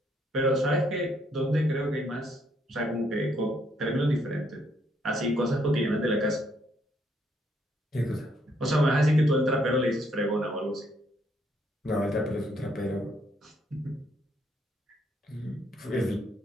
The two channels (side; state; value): both; normal; correlation 0.71